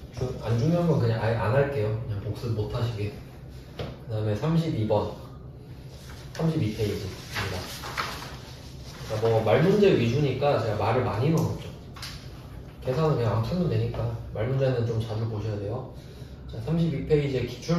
안 중요한 건 그냥 아예 안 할게요. 그냥 복습 못 하시게. 그 다음에 32번 32페이지입니다. 그러니까 뭐 말문제 위주니까 제가 말을 많이 넣었죠. 계산은 그냥 안 풀면 되니까 말문제는 좀 자주 보셔야 돼요. 자, 32페이지의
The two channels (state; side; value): identical; both; correlation 1.00